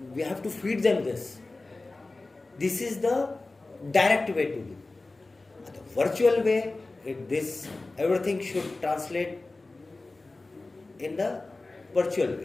we have to feed them this is the direct way to do. आता virtual way, this everything should translate in the virtual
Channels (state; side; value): quieter; right; 3.2 dB